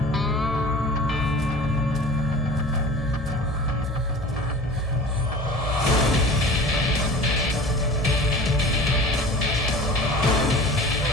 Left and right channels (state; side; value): normal; both; correlation 0.40